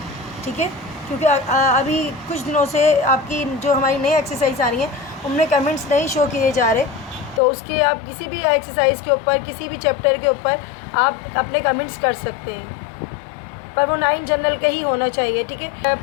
ठीक है। क्योंकि अभी कुछ दिनों से आपकी जो हमारी नई एक्सरसाइज आ रही हैं उनमें कमेंट्स नहीं शो किए जा रहे, तो उसके आप किसी भी एक्सरसाइज के ऊपर, किसी भी चैप्टर के ऊपर आप अपने कमेंट्स कर सकते हैं, पर वो 9 जनरल का ही होना चाहिए, ठीक है।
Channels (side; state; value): right; drops out; at 7.4 s